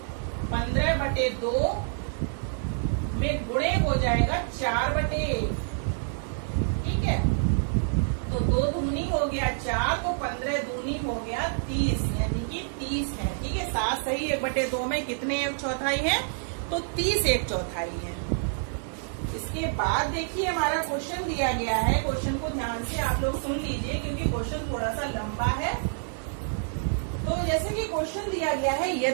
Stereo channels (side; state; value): left; silent; digital silence